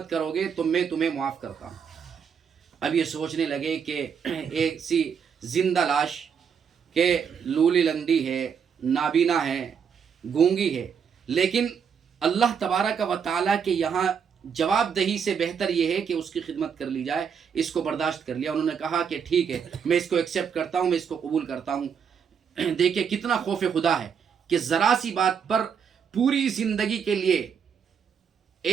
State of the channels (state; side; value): quieter; left; 7.0 dB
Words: کرو گے تو میں تمہیں معاف کرتا ہوں۔ اب یہ سوچنے لگے کہ ایک سی زندہ لاش کہ لولی لنگڑی ہے، نابینا ہے، گونگی ہے، لیکن اللہ تبارک و تعالیٰ کے یہاں جواب دہی سے بہتر یہ ہے کہ اس کی خدمت کر لی جائے۔ اس کو برداشت کر لیا۔ انہوں نے کہا کہ ٹھیک ہے، میں اس کو ایکسیپٹ کرتا ہوں، میں اس کو قبول کرتا ہوں۔ دیکھیں کتنا خوف خدا ہے کہ ذرا سی بات پر پوری زندگی کے لیے